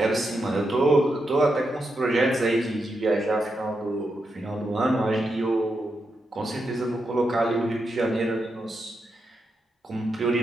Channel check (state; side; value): normal; both; correlation 0.85